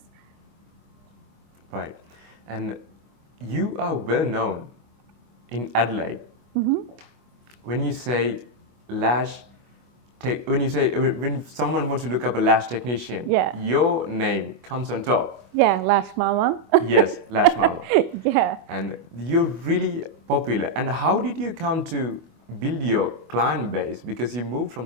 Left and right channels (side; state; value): left; late; 25 ms